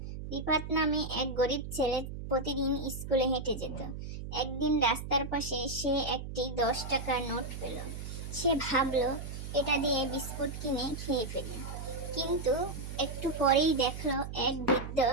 রিফাত নামে এক গরিব ছেলে প্রতিদিন স্কুলে হেঁটে যেত। একদিন রাস্তার পাশে সে একটি 10 টাকার নোট পেল। সে ভাবলো এটা দিয়ে বিস্কুট কিনে খেয়ে ফেলি, কিন্তু একটু পরেই দেখলো এক বৃদ্ধ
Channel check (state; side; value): noise; right; hum, 8 dB below the sound